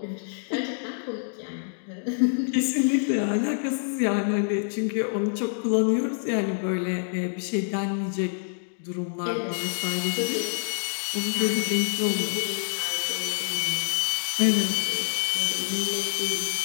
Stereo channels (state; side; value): silent; right; digital silence